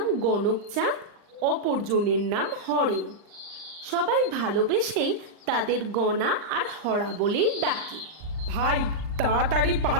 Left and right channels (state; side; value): late; left; 39 ms